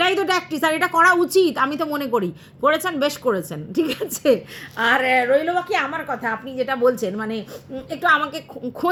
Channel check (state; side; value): identical; both; correlation 1.00